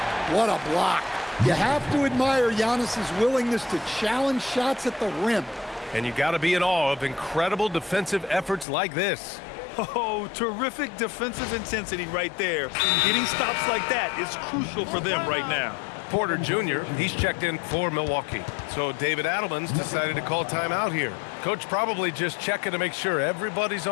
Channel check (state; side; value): drops out; right; at 8.7 s